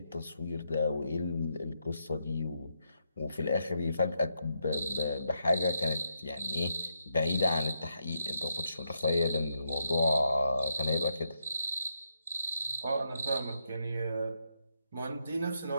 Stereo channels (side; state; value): both; inverted; correlation -0.81